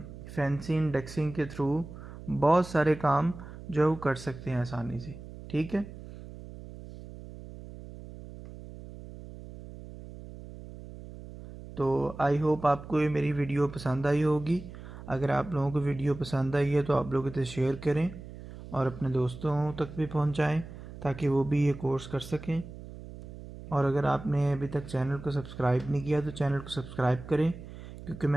फैंसी इंडेक्सिंग के थ्रू बहुत सारे काम जो है वो कर सकते हैं आसानी से, ठीक है। तो आई होप आपको ये मेरी वीडियो पसंद आई होगी। अगर आप लोगों को वीडियो पसंद आई है तो आप लोग इसे शेयर करें और अपने दोस्तों तक भी पहुंचाएं ताकि वो भी ये कोर्स कर सकें। और अगर आपने अभी तक चैनल को सब्सक्राइब नहीं किया तो चैनल को सब्सक्राइब करें, क्योंकि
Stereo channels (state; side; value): noise; right; hum, 14 dB below the sound